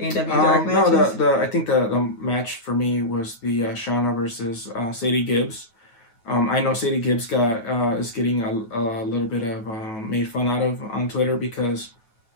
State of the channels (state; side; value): late; right; 9.3 ms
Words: AEW Dark matches? No, I think the match for me was the Shauna versus Sadie Gibbs. I know Sadie Gibbs is getting a little bit of made fun out of on Twitter because